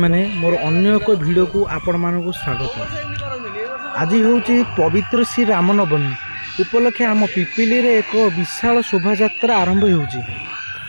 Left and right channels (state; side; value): inverted; both; correlation -1.00